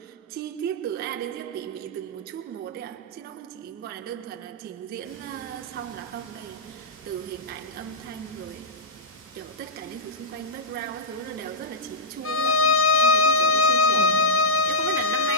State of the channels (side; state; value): both; normal; correlation -0.11